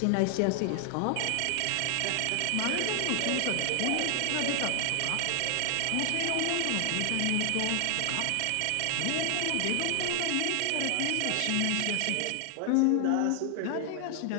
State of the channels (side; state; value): both; different; correlation 0.00